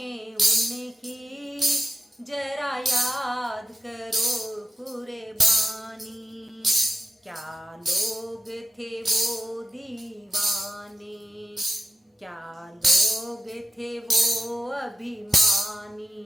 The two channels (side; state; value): both; normal; correlation 0.92